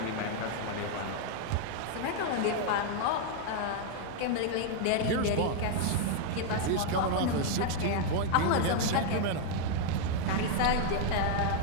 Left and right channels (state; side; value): different; both; correlation 0.00